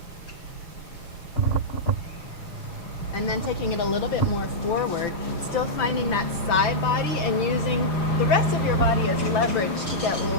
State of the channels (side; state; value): right; late; 5.9 ms